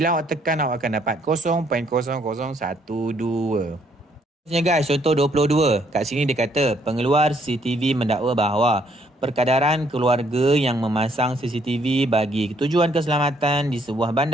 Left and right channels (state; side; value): normal; both; correlation 0.68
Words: awak tekan, awak akan dapat 0.0012. Guys, contoh 22. Kat sini dia kata pengeluar CCTV mendakwa bahawa perkadaran keluarga yang memasang CCTV bagi tujuan keselamatan di sebuah